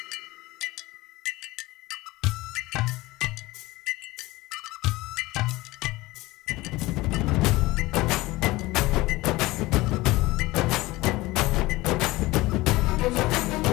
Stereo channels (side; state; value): right; quieter; 19.9 dB